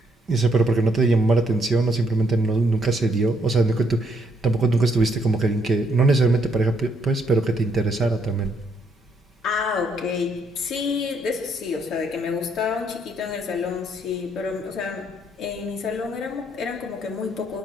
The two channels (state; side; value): normal; both; correlation 0.72